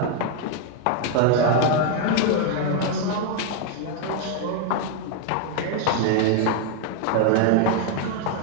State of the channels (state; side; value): different; both; correlation 0.00